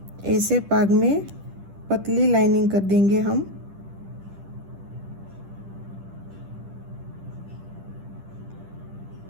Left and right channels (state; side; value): late; left; 10 ms